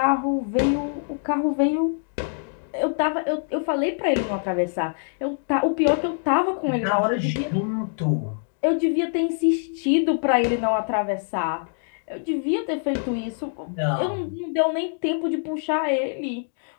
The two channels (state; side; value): silent; right; digital silence